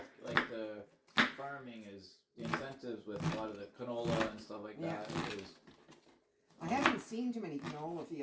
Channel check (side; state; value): both; identical; correlation 1.00